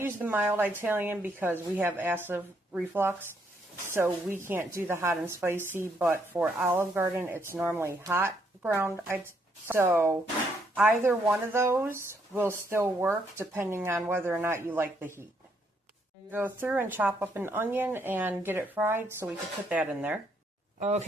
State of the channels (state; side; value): normal; both; correlation 0.73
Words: the mild Italian because we have acid reflux, so we can't do the hot and spicy, but for Olive Garden, it's normally hot ground. So either one of those will still work depending on whether or not you like the heat. Go through and chop up an onion and get it fried so we can put that in there.